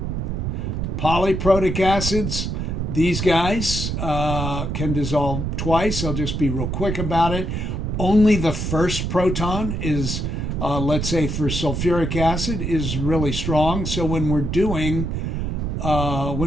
Polyprotic acids, these guys can dissolve twice. I'll just be real quick about it. Only the first proton is let's say for sulfuric acid, is really strong. So when we're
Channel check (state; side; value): noise; right; rumble, 2 dB below the sound